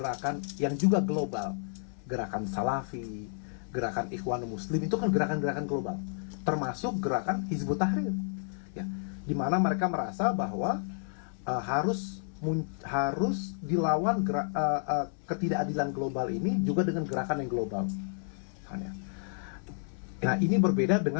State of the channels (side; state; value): right; silent; 57 dB below the other